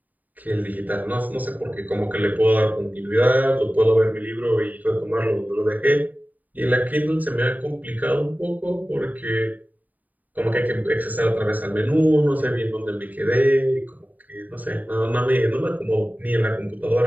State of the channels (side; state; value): left; late; 0.080 ms